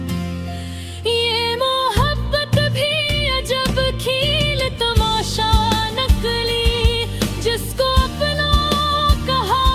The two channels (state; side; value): identical; both; correlation 1.00